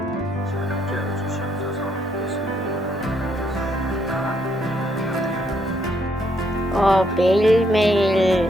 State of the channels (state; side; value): normal; both; correlation 0.72